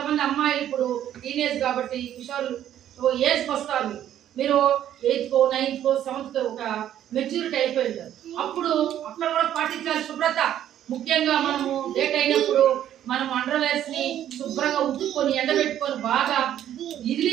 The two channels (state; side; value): quieter; left; 11.1 dB